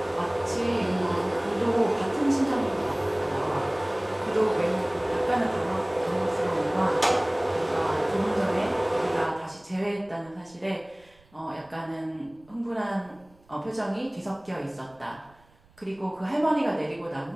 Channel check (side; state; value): right; noise; rumble, 30 dB below the sound